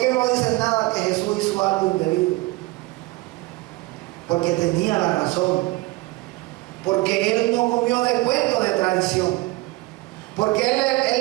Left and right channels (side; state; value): left; quieter; 21.3 dB